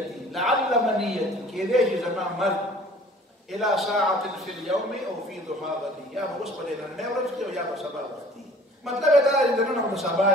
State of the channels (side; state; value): both; normal; correlation 0.50